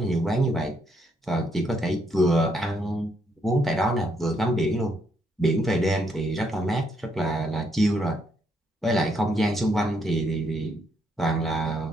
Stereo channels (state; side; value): normal; both; correlation 0.74